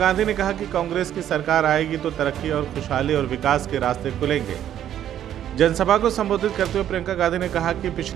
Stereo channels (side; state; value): left; quieter; 10.8 dB